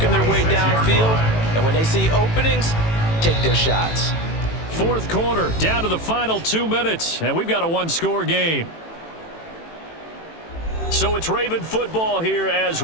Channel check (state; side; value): late; right; 18 ms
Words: their way downfield. And when they see openings, take their shots. 4th quarter, down to the final 2 minutes. And we've got a 1-score game. So it's Raven football here as